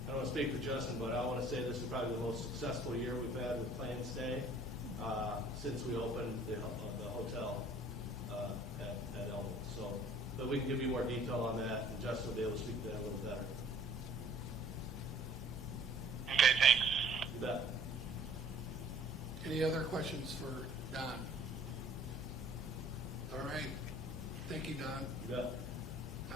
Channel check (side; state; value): both; normal; correlation 0.54